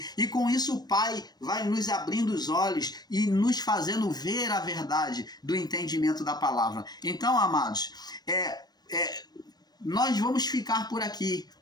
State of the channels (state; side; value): late; right; 0.19 ms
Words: e com isso o Pai vai nos abrindo os olhos e nos fazendo ver a verdade do entendimento da palavra. Então, amados, nós vamos ficar por aqui,